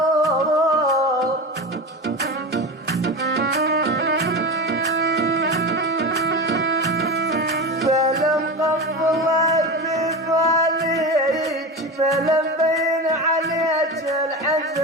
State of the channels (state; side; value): normal; both; correlation 0.24